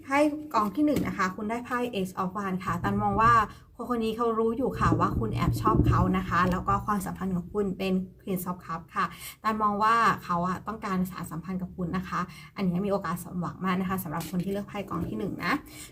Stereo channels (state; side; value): identical; both; correlation 1.00